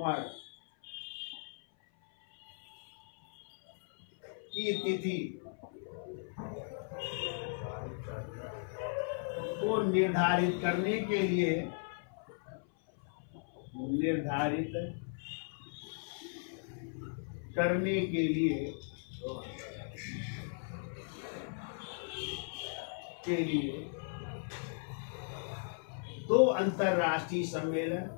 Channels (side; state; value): right; silent; 53 dB below the other